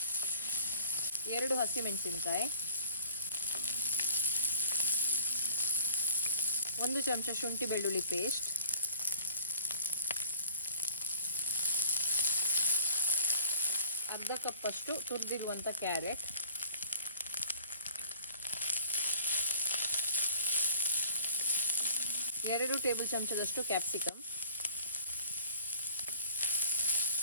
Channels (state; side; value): inverted; both; correlation -0.52